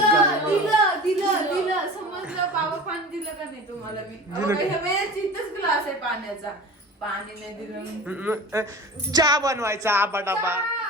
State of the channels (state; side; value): normal; both; correlation 0.37